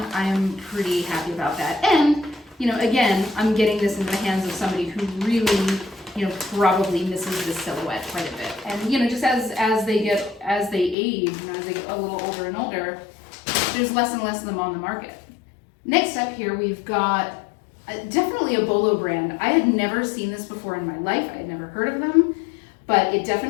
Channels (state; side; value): drops out; right; at 11.0 s